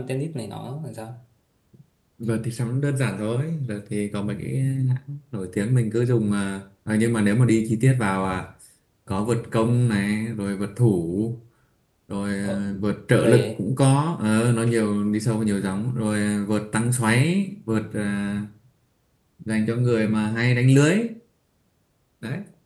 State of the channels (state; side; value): identical; both; correlation 1.00